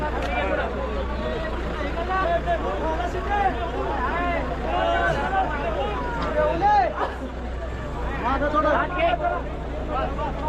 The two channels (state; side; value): identical; both; correlation 1.00